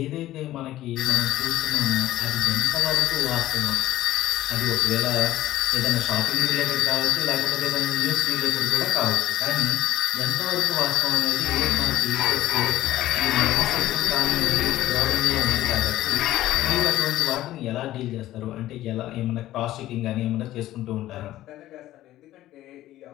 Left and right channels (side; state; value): right; quieter; 14.6 dB